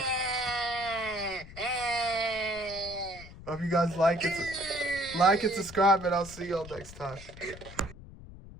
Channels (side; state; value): left; noise; rumble, 16 dB below the sound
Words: Hope you guys like it. Like and subscribe, and I'll see y'all next time.